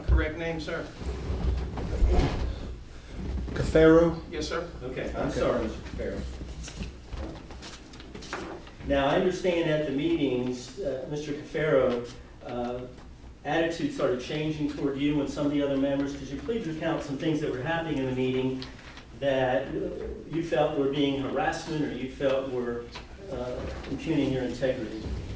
correct name, sir? Cafaro? Yes, sir. Okay, I'm Okay. sorry, Mr. Cafaro. Now, I understand at the meetings, Mr. Cafaro, attitude started changing toward you and some of the other members. Could you please recount some things that were happening in the meeting that you felt were being harassment or you felt were impugning your integrity?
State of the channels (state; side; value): identical; both; correlation 1.00